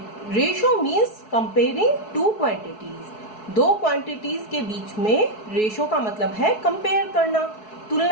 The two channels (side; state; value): right; late; 4.7 ms